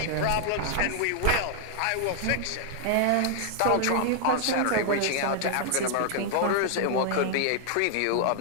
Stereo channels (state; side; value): different; both; correlation 0.00